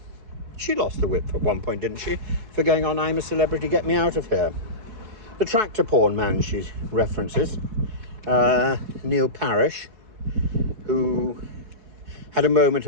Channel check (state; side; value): late; left; 4.7 ms